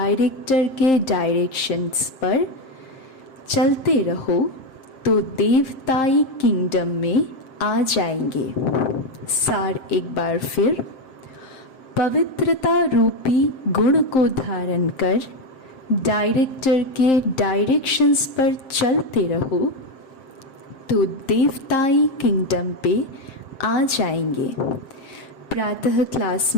के डायरेक्शंस पर चलते रहो तो देवताई किंगडम में आ जाएंगे। सार एक बार फिर, पवित्रता रूपी गुण को धारण कर डायरेक्टर के डायरेक्शंस पर चलते रहो तो देवताई किंगडम पे आ जाएंगे। प्रातः क्लास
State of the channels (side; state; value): right; late; 7.6 ms